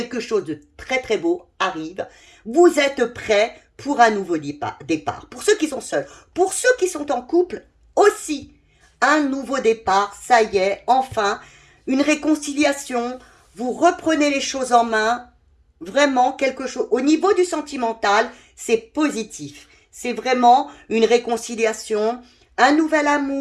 chose de très très beau arrive. Vous êtes prêts pour un nouveau départ. Pour ceux qui sont seuls, pour ceux qui sont en couple aussi, un nouveau départ. Ça y est, enfin, une réconciliation. Vous reprenez les choses en main. Vraiment quelque chose. Au niveau du sentimental, c'est positif. C'est vraiment une réconciliation, un nouvel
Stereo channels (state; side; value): identical; both; correlation 1.00